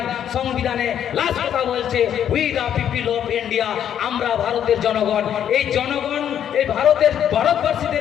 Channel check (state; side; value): quieter; right; 9.6 dB